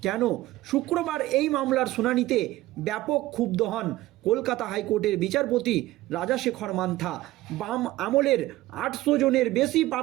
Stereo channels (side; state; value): left; quieter; 17.0 dB